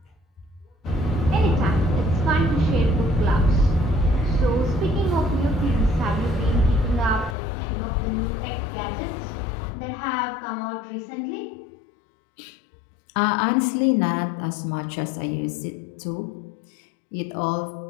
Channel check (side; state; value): right; drops out; at 7.4 s